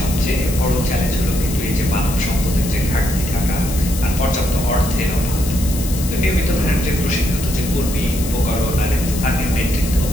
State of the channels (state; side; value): noise; left; hiss, 9 dB below the sound